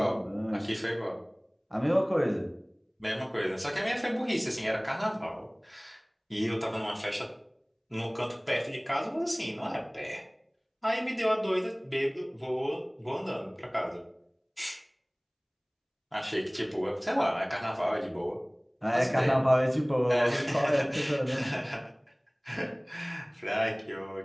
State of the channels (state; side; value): identical; both; correlation 1.00